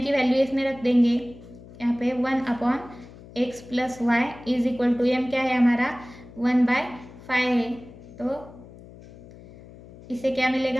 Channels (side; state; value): left; noise; hum, 19 dB below the sound